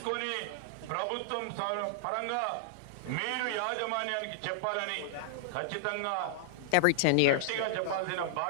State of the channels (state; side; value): different; both; correlation -0.01